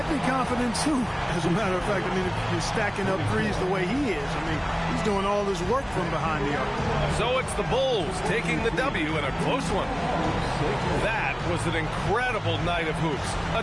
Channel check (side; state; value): both; identical; correlation 1.00